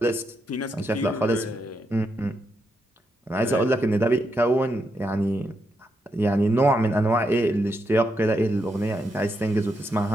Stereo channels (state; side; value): normal; both; correlation 0.82